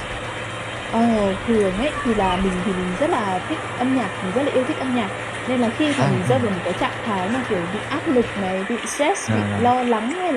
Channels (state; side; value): identical; both; correlation 1.00